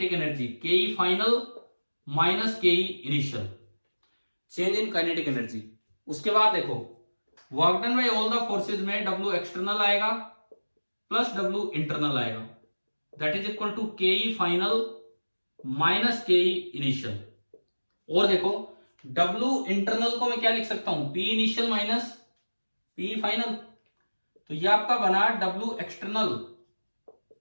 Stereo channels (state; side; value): inverted; both; correlation -1.00